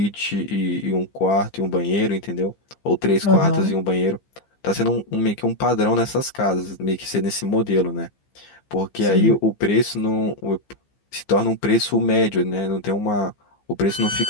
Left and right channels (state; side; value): late; right; 15 ms